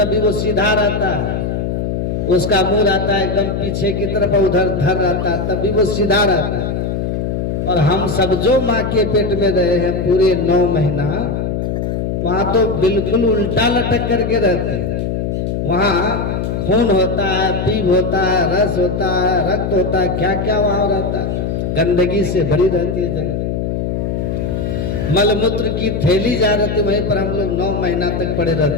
वो सीधा रहता है, उसका मुंह रहता है एकदम पीछे की तरफ, उधर धर रहता है, तभी वो सीधा रहता है। और हम सब जो माँ के पेट में रहे हैं पूरे 9 महीना, वहाँ तो बिल्कुल उल्टा लटक करके रहते हैं। वहाँ खून होता है, पीप होता है, रस होता है, रक्त होता है, क्या क्या वहाँ रहता है। गंदगी से भरी रहती है जगह, मलमूत्र की थैली जा रहती है, वहीं पर हम लोग 9 महीना तक पड़े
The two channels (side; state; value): left; noise; hum, 1 dB below the sound